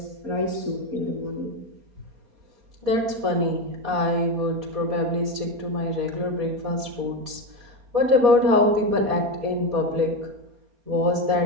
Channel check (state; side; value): late; left; 4.2 ms